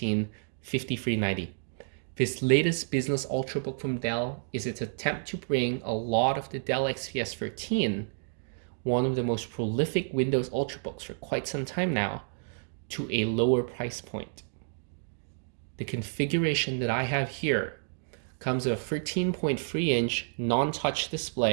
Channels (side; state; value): left; silent; digital silence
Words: 5390. This latest business Ultrabook from Dell is its attempt to bring a lot of the Dell XPS 13, one of the most prolific Windows Ultrabooks for quite some time now, to a lower price point. The configuration that I have here comes with a 13.3-inch non-touch